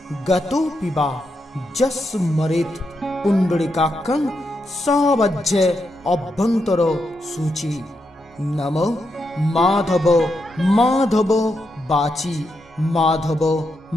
গতো পিবা যস্মরেত পুণ্ডরিকাক্ষং সবজ্জ অভ্যন্তর সূচি। নমো মাধব মাধব বাচি, মাধব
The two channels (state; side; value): normal; both; correlation 0.83